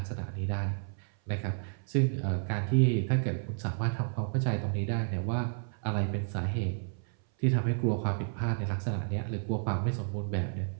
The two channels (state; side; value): silent; left; 57 dB below the other